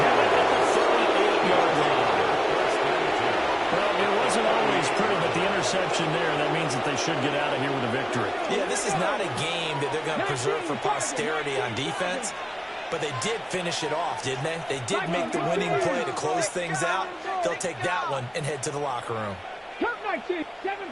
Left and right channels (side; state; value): both; identical; correlation 1.00